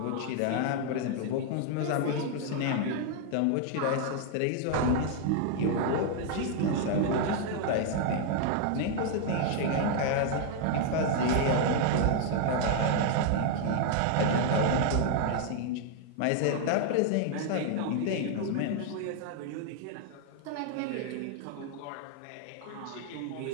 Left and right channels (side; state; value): both; different; correlation 0.00